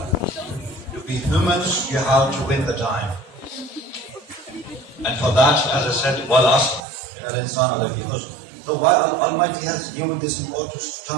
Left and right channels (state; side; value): drops out; left; at 6.8 s